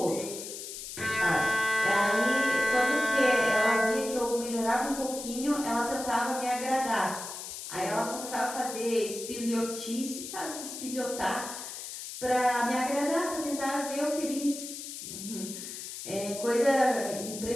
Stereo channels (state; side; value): noise; left; hiss, 9 dB below the sound